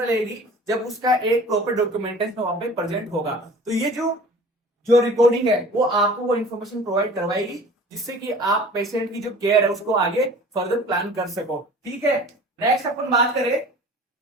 लगेगी, जब उसका एक प्रॉपर डॉक्यूमेंटेशन वहां पे प्रेजेंट होगा। तो ये जो रिकॉर्डिंग है वो आपको वो इन्फॉर्मेशन प्रोवाइड करवाएगी, जिससे कि आप पेशेंट की जो केयर है उसको आगे फर्दर प्लान कर सको, ठीक है। नेक्स्ट अपन बात करें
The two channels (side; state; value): both; normal; correlation 0.44